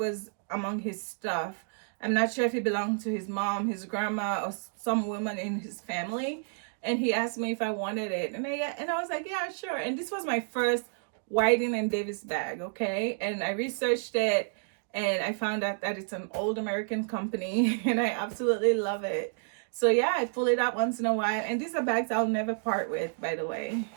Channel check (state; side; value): silent; left; digital silence